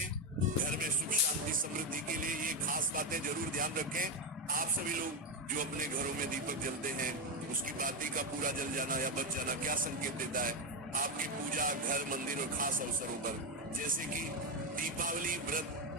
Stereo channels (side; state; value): both; normal; correlation 0.08